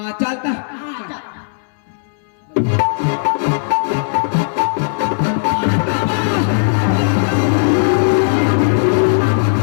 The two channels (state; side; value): silent; right; digital silence